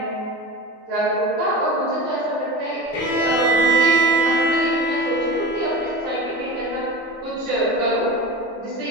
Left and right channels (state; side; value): normal; both; correlation 0.31